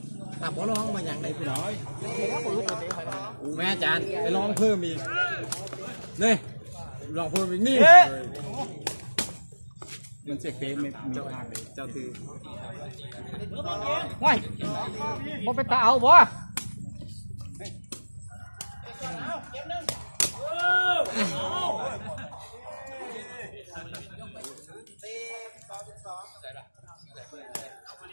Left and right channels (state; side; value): inverted; both; correlation -1.00